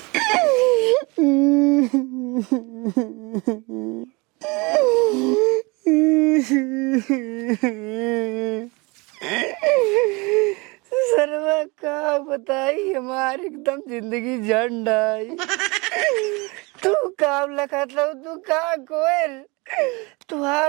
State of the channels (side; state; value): left; quieter; 26.8 dB